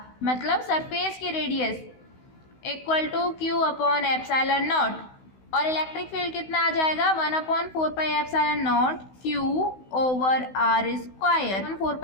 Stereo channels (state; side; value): late; right; 16 ms